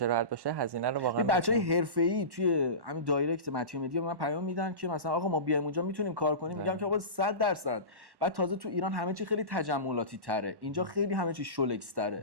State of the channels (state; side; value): late; left; 1.1 ms